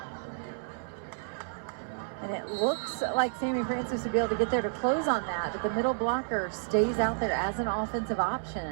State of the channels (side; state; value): left; silent; digital silence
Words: And it looks like Sammy Francis would be able to get there to close on that, but the middle blocker stays out there as an offensive option